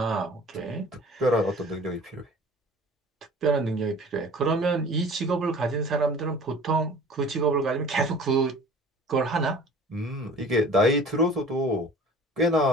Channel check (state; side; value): normal; both; correlation 0.45